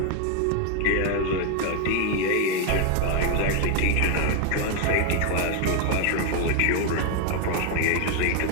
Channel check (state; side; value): different; both; correlation 0.01